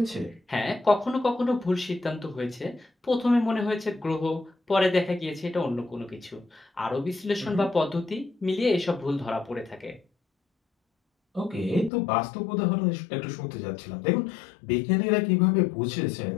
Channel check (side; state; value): right; drops out; at 11.9 s